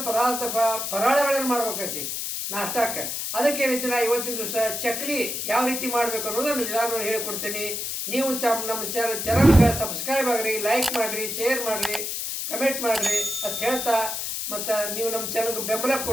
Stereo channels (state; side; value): noise; left; hiss, 3 dB below the sound